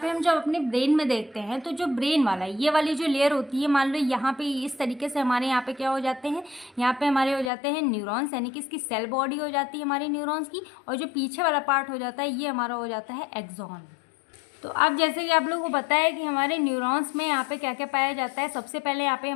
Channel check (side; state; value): right; drops out; at 7.5 s